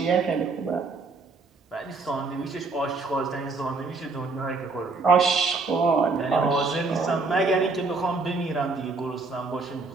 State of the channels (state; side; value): quieter; left; 4.0 dB